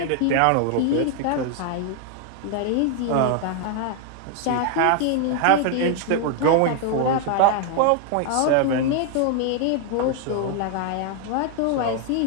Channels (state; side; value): different; both; correlation 0.00